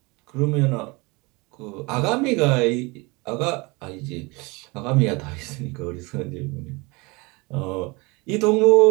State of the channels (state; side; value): quieter; left; 26.2 dB